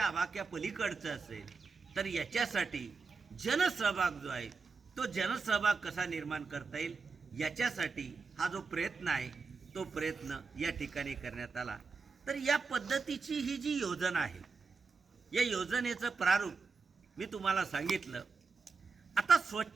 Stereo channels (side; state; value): left; quieter; 4.5 dB